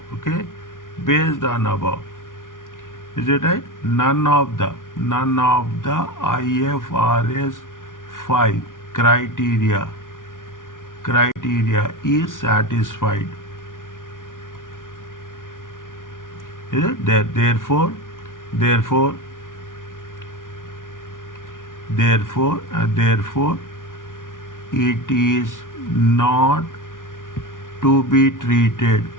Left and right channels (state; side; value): late; right; 0.88 ms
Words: Okay, based on above. Is it right? None of the IFRS 5 criteria is satisfied. Is it? Therefore it is not to be treated